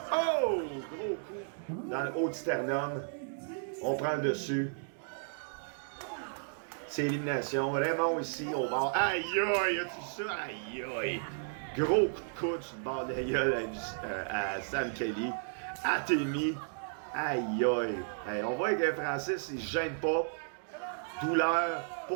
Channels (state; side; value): silent; left; digital silence